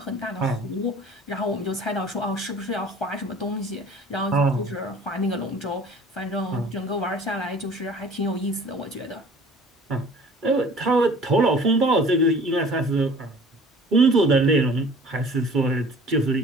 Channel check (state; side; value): normal; both; correlation 0.48